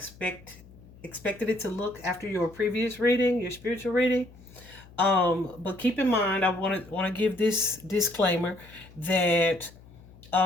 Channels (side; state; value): left; noise; hum, 22 dB below the sound